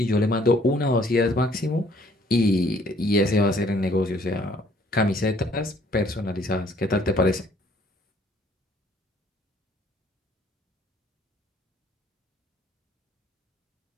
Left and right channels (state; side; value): normal; both; correlation 0.61